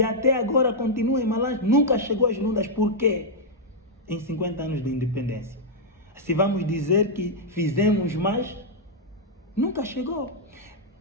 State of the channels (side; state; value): both; normal; correlation -0.05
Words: até agora continua em Malange, nunca chegou às Lundas. Por quê? Em 50 anos de independência. Se vamos dizer que fizemos mais, nunca chegou.